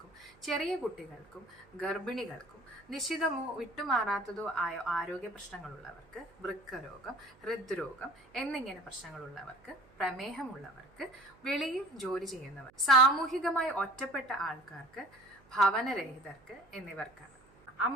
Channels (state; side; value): noise; right; hum, 29 dB below the sound